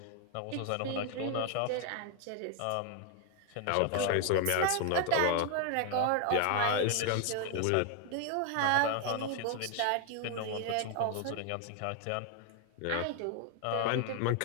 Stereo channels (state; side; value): different; both; correlation 0.00